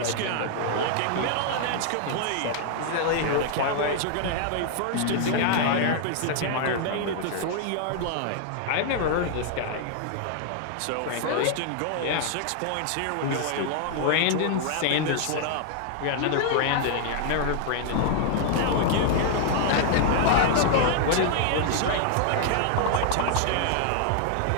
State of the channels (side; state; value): both; different; correlation 0.00